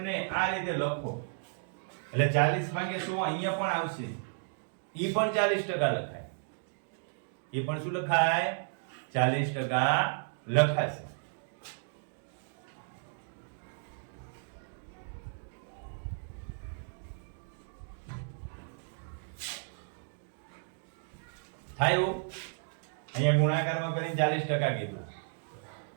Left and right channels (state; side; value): silent; left; digital silence